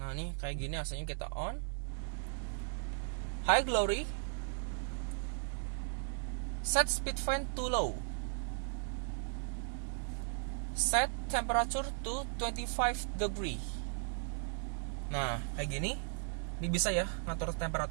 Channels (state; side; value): silent; left; digital silence